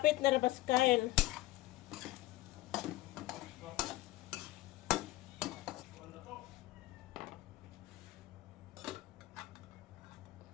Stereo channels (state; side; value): quieter; right; 17.6 dB